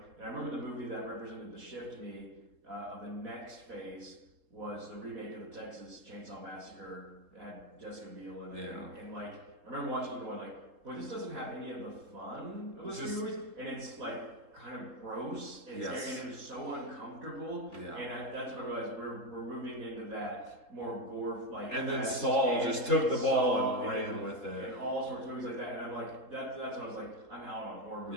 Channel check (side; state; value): left; late; 3.7 ms